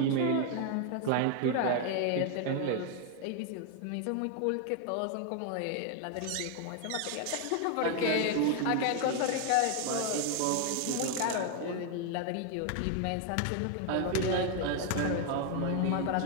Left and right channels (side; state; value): both; different; correlation 0.00